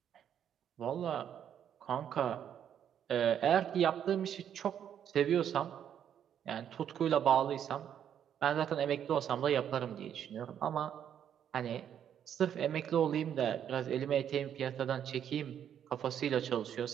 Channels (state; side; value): quieter; left; 9.3 dB